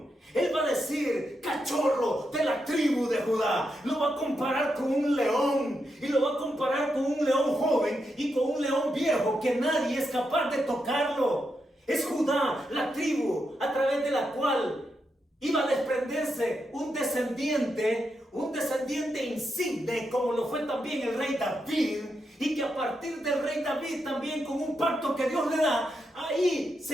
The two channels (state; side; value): normal; both; correlation 0.84